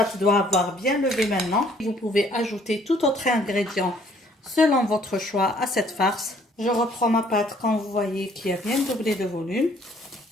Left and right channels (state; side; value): normal; both; correlation 0.61